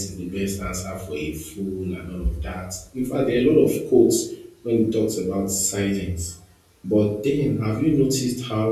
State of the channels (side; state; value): both; identical; correlation 1.00